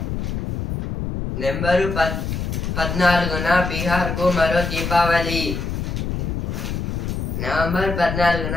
నెంబరు 14న బీహార్కు మరో దీపావళి. నవంబర్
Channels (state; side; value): noise; left; rumble, 3 dB below the sound